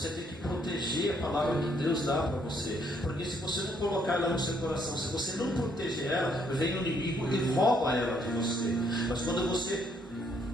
tem que proteger a palavra que Deus dá para você, porque se você não colocar ela no seu coração, se você não proteger ela, vem o inimigo e rouba ela de você. Mas quando você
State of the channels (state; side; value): normal; both; correlation 0.70